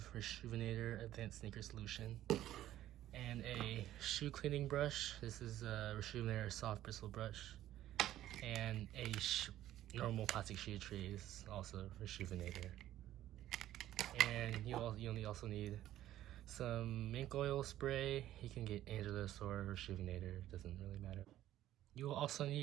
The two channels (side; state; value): left; quieter; 13.3 dB